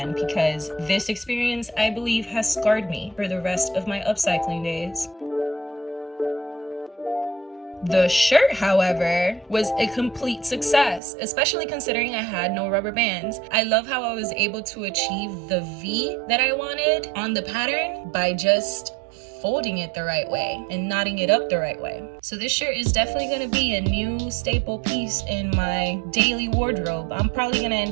because this experience, I believe, has scarred me for the rest of my upcycling days. The shirt, however, was a complete success, especially considering I had no rubber bands. I love how I was able to achieve the V that I wanted on the pattern by just folding it the right way and knotting it up the right way. So this shirt is definitely going to be a new staple piece in my daily wardrobe. I'm probably going to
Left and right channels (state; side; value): drops out; left; at 11.0 s